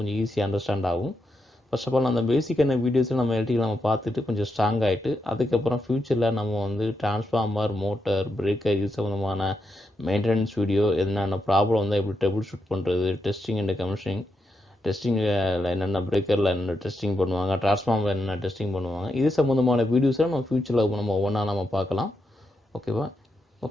கொஞ்சம் ஈஸியாக அண்டர்ஸ்டாண்ட் ஆகும். ஃபர்ஸ்ட் ஆஃப் ஆல் அந்த பேசிக்கான வீடியோஸில் நம்ம எலக்ட்ரிக்கல் நம்ம பார்த்துட்டு கொஞ்சம் ஸ்ட்ராங் ஆகிட்டு அதுக்கப்புறம் ஃப்யூச்சரில் நம்ம வந்து டிரான்ஸ்ஃபார்மர், மோட்டர், பிரேக்கர் இது சம்மந்தமான மெயின்டெனன்ஸ் வீடியோ, என்னென்ன ப்ராப்ளம் வந்தால் எப்படி ட்ரபிள் ஷூட் பண்ணுறது, டெஸ்டிங் அண்ட் கமிஷனிங், டெஸ்டிங்கில் என்னென்ன பிரேக்கரில் என்னென்ன டெஸ்டிங் பண்ணுவாங்க, டிரான்ஸ்ஃபார்மர் என்னென்ன டெஸ்டிங் பண்ணுவாங்க, இது சம்மந்தமான வீடியோஸை நம்ம ஃப்யூச்சரில் நம்ம ஒவ்வொன்றா நம்ம பார்க்கலாம். ஓகேவா?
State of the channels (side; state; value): both; normal; correlation 0.83